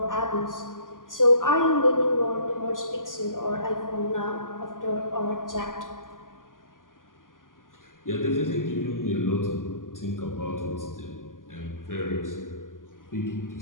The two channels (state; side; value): late; right; 0.89 ms